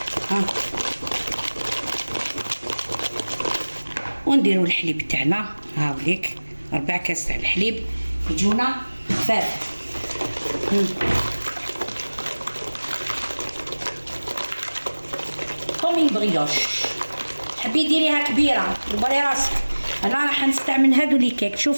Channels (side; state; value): both; inverted; correlation -1.00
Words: ونديروا الحليب تاعنا. هاوليك 4 كاس تاع الحليب يجونا خفاف. كومين بريوش. تحبي ديريها كبيره دبري راسك. انا راح نستعمل هادو لي كيك.